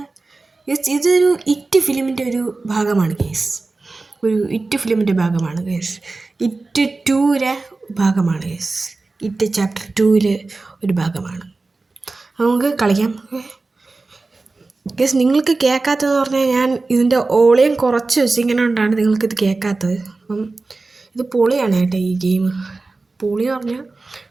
ഗേസ് ഇതൊരു ഇറ്റ് ഫിലിമിൻ്റെ ഒരു ഭാഗമാണ് ഗേസ്, ഒരു ഇറ്റ് ഫിലിമിൻ്റെ ഭാഗമാണ് ഗേസ്. ഇറ്റ് 2 ഭാഗമാണ് ഗേസ്, ഇറ്റ് ചാപ്റ്റർ 2 ഒരു ഭാഗമാണ്. നമുക്ക് കളിക്കാം. ഗേസ് നിങ്ങൾക്ക് കേൾക്കാത്തതെന്ന് പറഞ്ഞാൽ ഞാൻ ഇതിൻ്റെ ഓളിയം കുറച്ച് വെച്ചിങ്ങനെ കൊണ്ടാണ് നിങ്ങൾക്കിത് കേൾക്കാത്തത്. അപ്പം ഇത് പൊളിയാണ് കേട്ടോ ഈ ഗെയിം. പൊളി പറഞ്ഞാൽ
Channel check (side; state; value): left; quieter; 3.6 dB